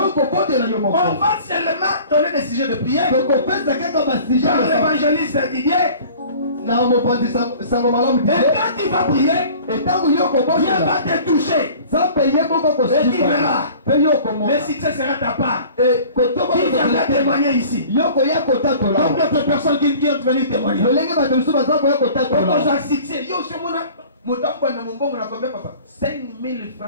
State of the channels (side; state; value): both; inverted; correlation -0.46